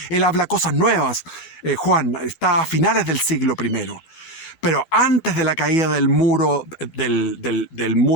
Él habla cosas nuevas. Juan está a finales del siglo I. Pero antes de la caída del muro del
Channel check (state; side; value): late; right; 11 ms